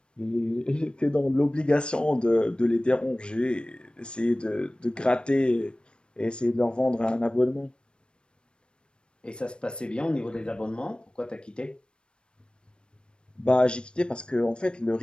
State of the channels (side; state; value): right; late; 0.054 ms